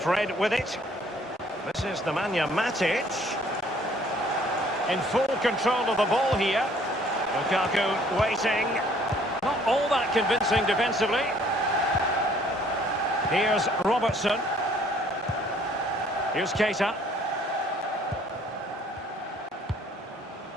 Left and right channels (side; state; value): both; normal; correlation 0.59